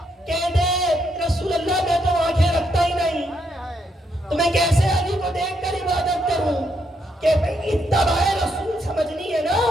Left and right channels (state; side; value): normal; both; correlation 0.77